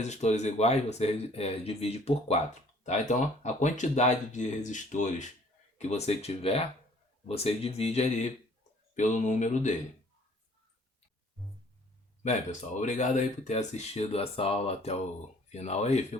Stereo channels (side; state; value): both; normal; correlation 0.57